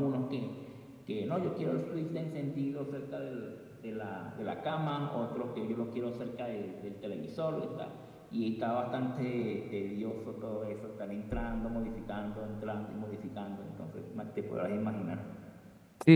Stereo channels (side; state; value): both; identical; correlation 1.00